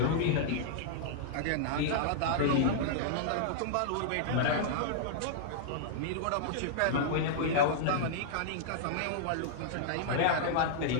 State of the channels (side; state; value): both; different; correlation -0.02